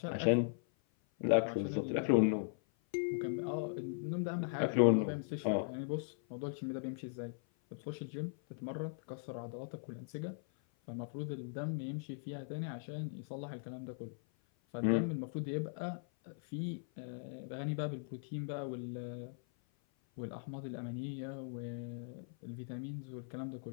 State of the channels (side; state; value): right; silent; 52 dB below the other